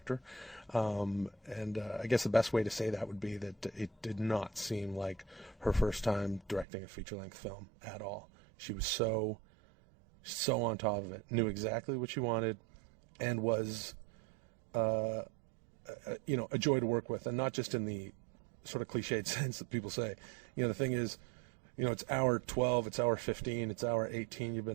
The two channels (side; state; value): left; drops out; at 6.7 s